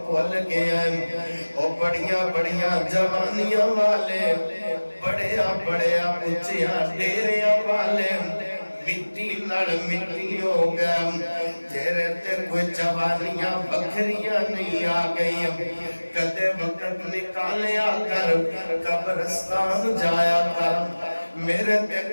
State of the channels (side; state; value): both; inverted; correlation -1.00